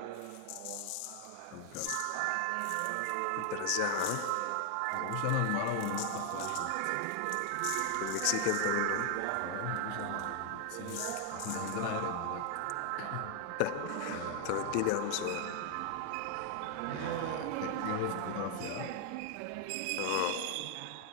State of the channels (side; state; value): both; different; correlation 0.00